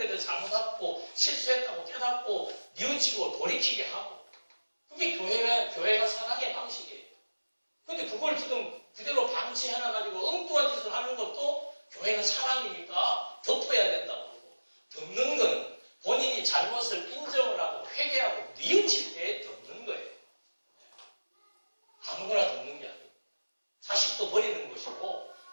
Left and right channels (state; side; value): inverted; both; correlation -1.00